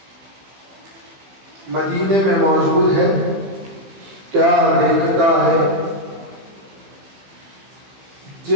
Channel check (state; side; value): late; left; 15 ms